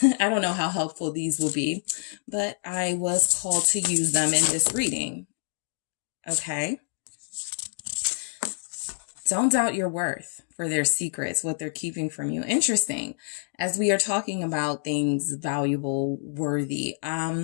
I don't know how helpful these will be, but I was called to use them in this reading. Okay. Don't doubt your worth for their secrets, what they're keeping from you. Interesting. As we are talking about things valuable, worthy,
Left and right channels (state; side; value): silent; right; digital silence